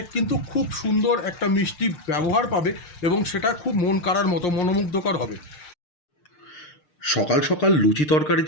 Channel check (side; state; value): right; late; 6.6 ms